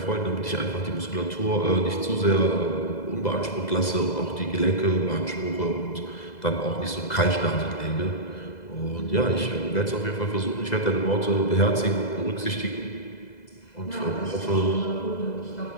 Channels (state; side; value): late; right; 2.0 ms